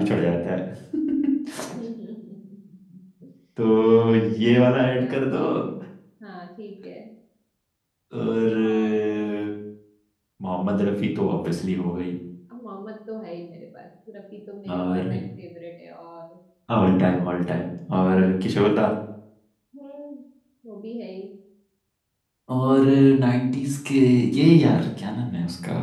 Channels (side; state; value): both; identical; correlation 1.00